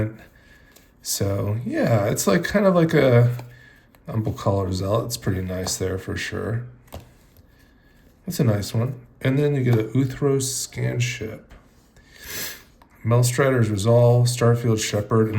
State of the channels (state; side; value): identical; both; correlation 1.00